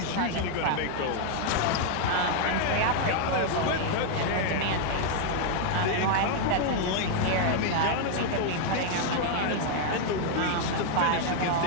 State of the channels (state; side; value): different; both; correlation 0.00